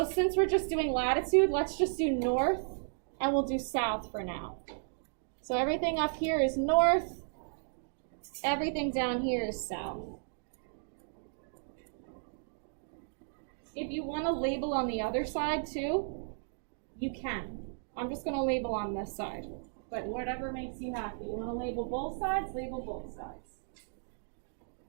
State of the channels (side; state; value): left; silent; digital silence